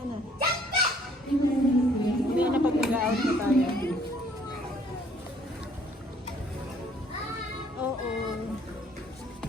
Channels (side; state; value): both; normal; correlation 0.61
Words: na. Mamaya na pag nag-out na tayo. Oo.